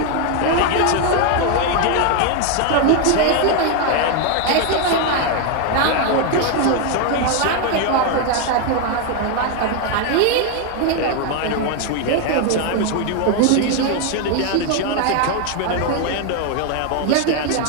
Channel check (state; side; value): different; both; correlation 0.01